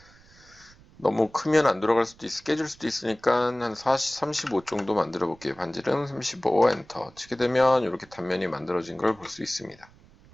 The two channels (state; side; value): noise; right; rumble, 26 dB below the sound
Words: 너무 크면 안 들어갈 수도 깨질 수도 있으니까 한 35 정도 만들어 볼게요. 반지름 35 엔터 치게 되면 이렇게 단면이 만들어진 걸 볼 수 있습니다.